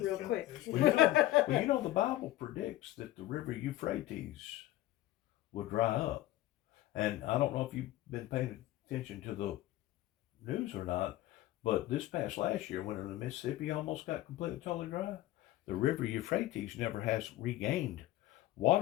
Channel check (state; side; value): quieter; right; 15.5 dB